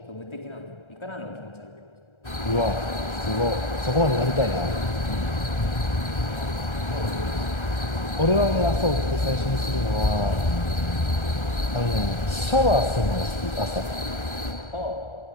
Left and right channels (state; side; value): late; right; 1.3 ms